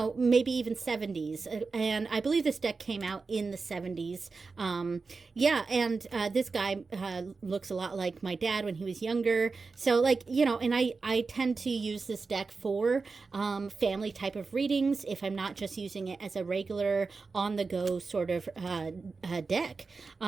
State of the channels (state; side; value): quieter; left; 4.3 dB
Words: maybe even 70s. And I believe this deck came out in the 70s. This guy looks a lot like my dad when he was younger. So and I tend to use this deck for family type of readings if I'm not just using it as a regular on the go sort of deck.